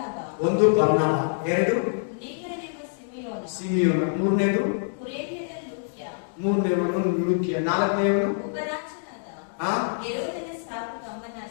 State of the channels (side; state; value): right; silent; digital silence